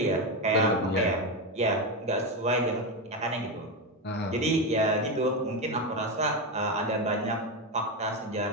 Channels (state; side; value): normal; both; correlation 0.12